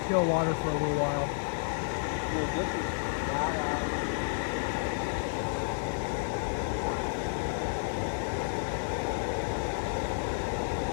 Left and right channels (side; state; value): right; silent; digital silence